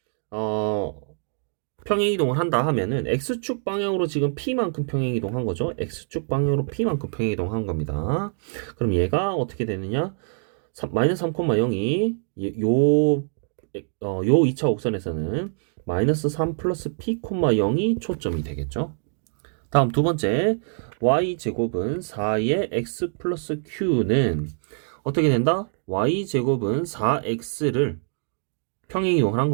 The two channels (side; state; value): left; silent; digital silence